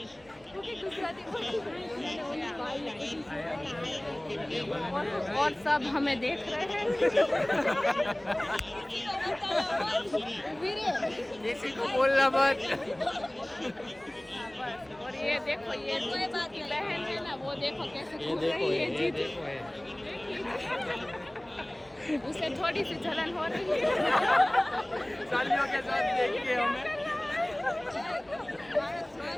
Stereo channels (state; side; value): noise; left; hum, 30 dB below the sound